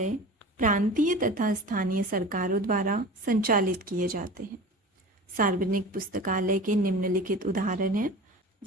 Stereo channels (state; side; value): normal; both; correlation 0.36